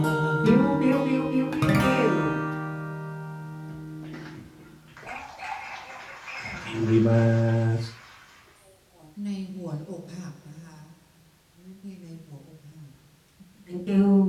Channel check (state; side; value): identical; both; correlation 1.00